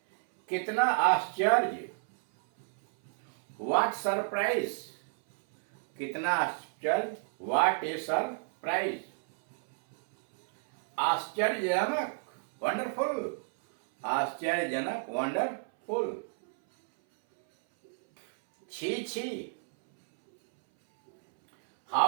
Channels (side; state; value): left; silent; 57 dB below the other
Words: कितना आश्चर्य, व्हाट सरप्राइज, कितना आश्चर्य, व्हाट ए सरप्राइज। आश्चर्यजनक, वंडरफुल, आश्चर्यजनक, वंडरफुल। छी छी,